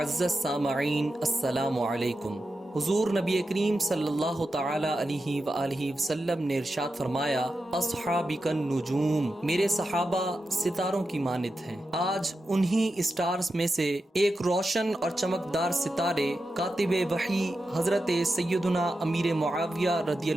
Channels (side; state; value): both; normal; correlation 0.90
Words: سامعین السلام علیکم۔ حضور نبی کریم صلی اللہ تعالی علیہ وآلہ وسلم نے ارشاد فرمایا، اصحابک النجوم، میرے صحابہ ستاروں کی مانند ہیں۔ آج انہی اسٹارز میں سے ایک روشن اور چمکدار ستارے کاتب وحی حضرت سیدنا امیر معاویہ رضی